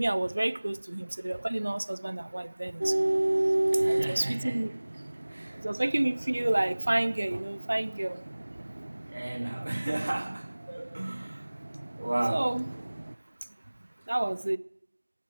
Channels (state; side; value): inverted; both; correlation -1.00